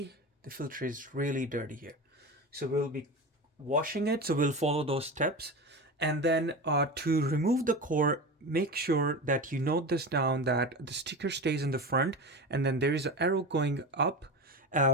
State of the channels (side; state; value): both; normal; correlation 0.26